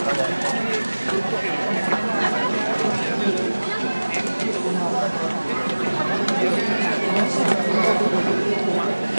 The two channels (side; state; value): both; inverted; correlation -1.00